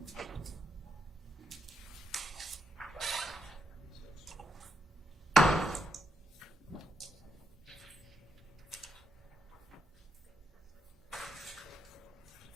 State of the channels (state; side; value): normal; both; correlation 0.81